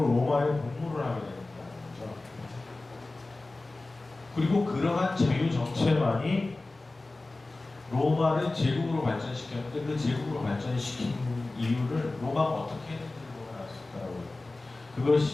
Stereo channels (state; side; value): quieter; right; 3.1 dB